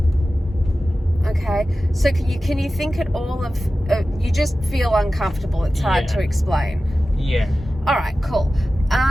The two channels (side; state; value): both; normal; correlation 0.95